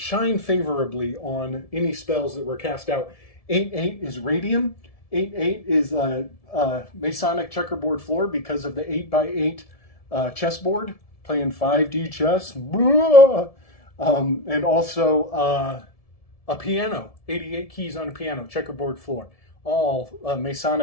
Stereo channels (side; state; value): right; late; 1.7 ms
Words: favorably on any spells that were cast out. 8-8 is radium. 8-8 is a Masonic checkerboard floor because of the 8x8 chessboard, playing 5D chess. And also a piano, 88 keys on a piano, checkerboard floor. All